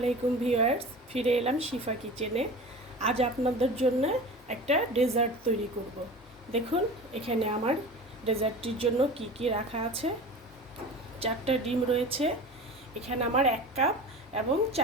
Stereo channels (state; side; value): normal; both; correlation 0.35